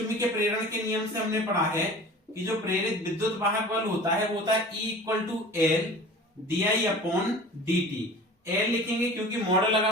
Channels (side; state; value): both; normal; correlation 0.41